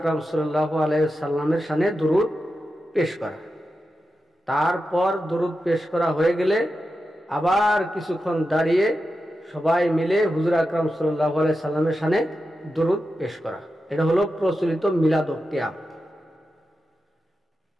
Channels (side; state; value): both; normal; correlation 0.90